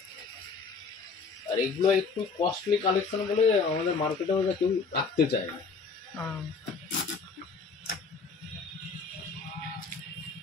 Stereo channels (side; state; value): right; quieter; 4.8 dB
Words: আর এগুলো একটু কস্টলি কালেকশন বলে আমাদের মার্কেটে ওরা কেউ রাখতে চায় না।